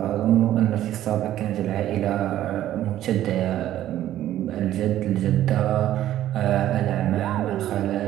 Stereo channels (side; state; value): left; quieter; 12.7 dB